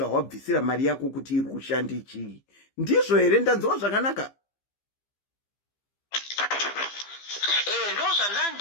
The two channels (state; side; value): late; right; 15 ms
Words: mari yako kuti iri kushanda chii. Ndizvo here ndanzwa zvakanaka? Ndo